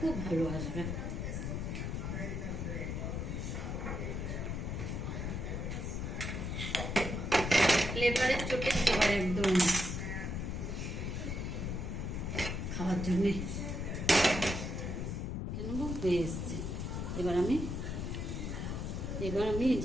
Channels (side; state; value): left; noise; rumble, 3 dB below the sound